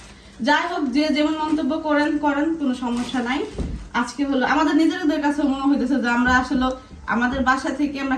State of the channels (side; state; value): both; identical; correlation 1.00